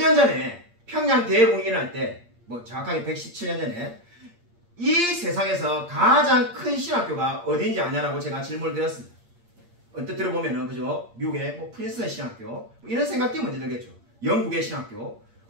전에 평양 대공연을 할 때 뭐 정확하게 117년 전에 이 세상에서 가장 큰 신학교가 어딘지 아냐라고 제가 질문을 드렸습니다. 언뜻 들어보면은 그죠? 미국의 뭐 프린스턴 신학교 뭐 이런 생각이 먼저 들겠죠. 영국의 신학교,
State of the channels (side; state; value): left; late; 8.6 ms